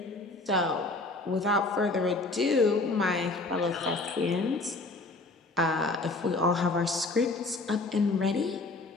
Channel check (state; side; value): quieter; right; 3.3 dB